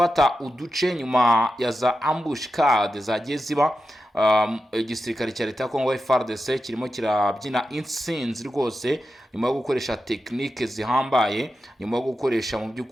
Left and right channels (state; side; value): normal; both; correlation 0.90